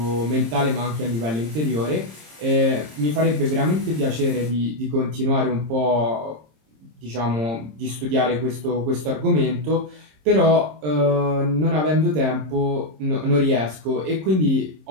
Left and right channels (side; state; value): left; late; 26 ms